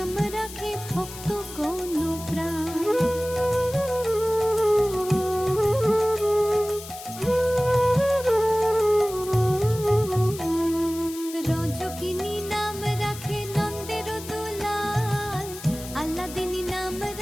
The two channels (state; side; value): noise; left; hiss, 14 dB below the sound